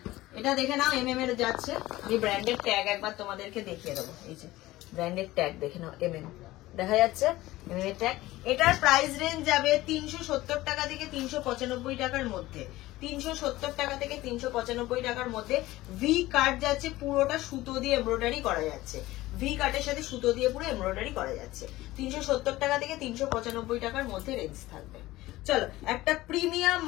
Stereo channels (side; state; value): right; quieter; 17.5 dB